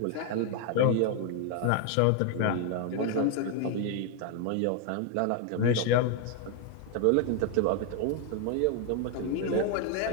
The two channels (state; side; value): different; both; correlation 0.01